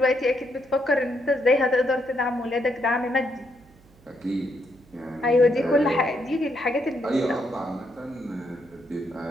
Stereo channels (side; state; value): right; noise; hum, 28 dB below the sound